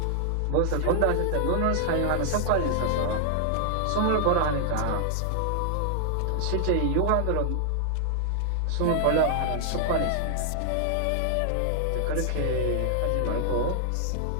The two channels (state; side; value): different; both; correlation 0.00